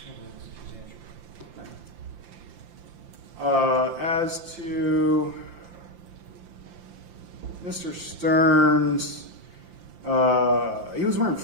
As to Mr. Sterns, he was wearing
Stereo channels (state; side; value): late; left; 5.8 ms